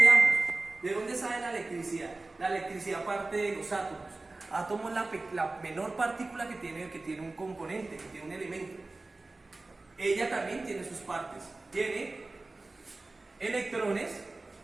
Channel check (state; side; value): quieter; left; 3.2 dB